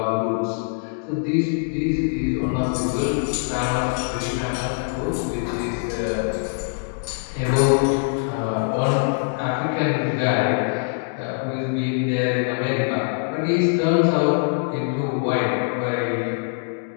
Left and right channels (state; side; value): silent; right; 63 dB below the other